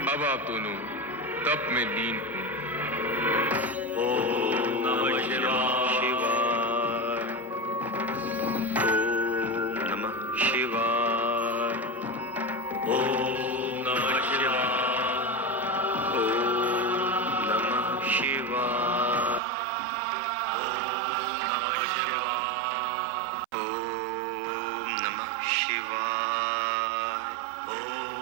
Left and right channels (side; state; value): left; drops out; at 19.4 s